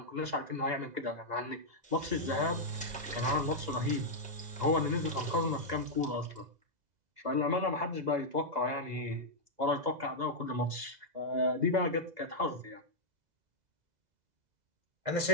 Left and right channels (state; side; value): late; left; 2.0 ms